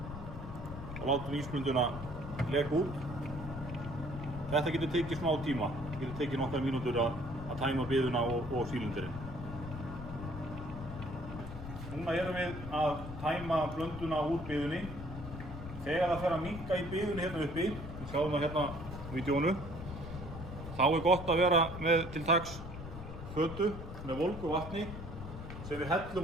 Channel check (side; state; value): left; noise; rumble, 9 dB below the sound